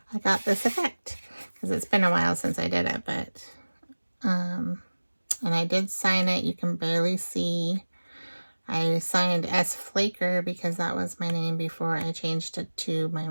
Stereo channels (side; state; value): both; inverted; correlation -1.00